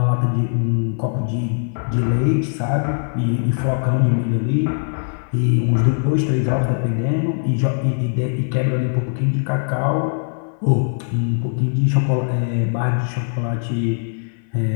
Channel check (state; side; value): silent; right; 60 dB below the other